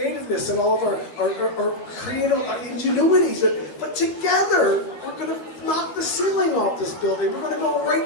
and all of our creative ingenuities. But together, we're going to knock the ceiling off this building. We're going to go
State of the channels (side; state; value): right; late; 12 ms